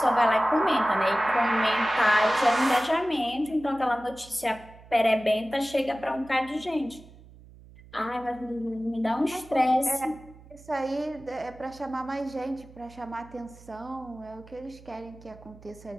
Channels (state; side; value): noise; right; hum, 21 dB below the sound